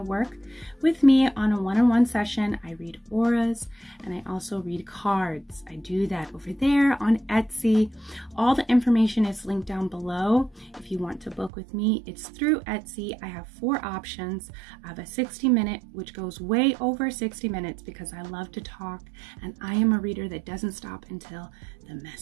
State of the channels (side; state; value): left; drops out; at 11.5 s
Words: work with me on a one-on-one session, I read auras and I also read cards. I do that over there on Etsy. All the information is linked down below. If you want to book with me, it's through Etsy. I have 4 options. I have a 60-minute, which goes way over 60 minutes because I love to talk and I am a reader that doesn't stop until the